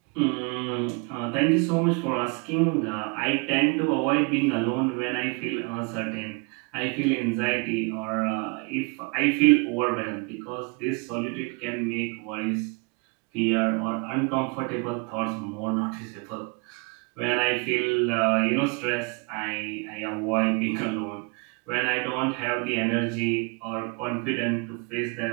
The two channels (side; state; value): left; quieter; 31.9 dB